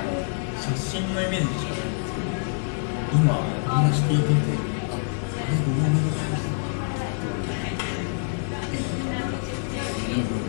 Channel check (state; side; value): silent; right; digital silence